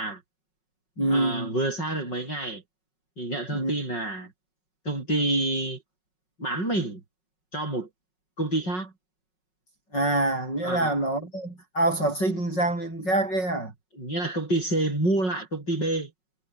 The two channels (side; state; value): right; late; 5.4 ms